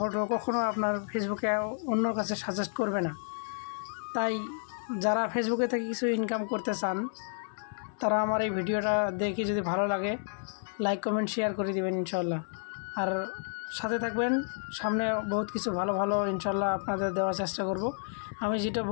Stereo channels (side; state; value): right; silent; digital silence